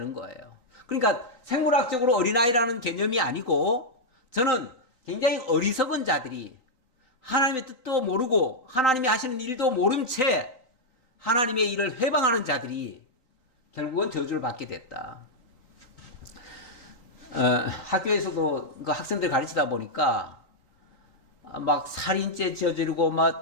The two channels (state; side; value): late; right; 3.9 ms